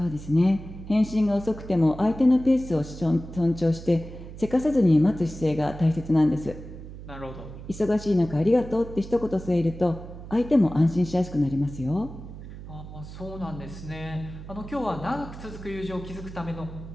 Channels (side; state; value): right; noise; hum, 13 dB below the sound